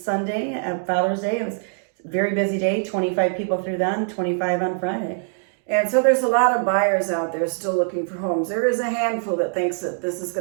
at Father's Day. It was a very busy day. 25 people through then, 25 on Friday. And so there's a lot of buyers out there still looking for homes. There is a handful that thinks that this is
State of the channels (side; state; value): left; silent; digital silence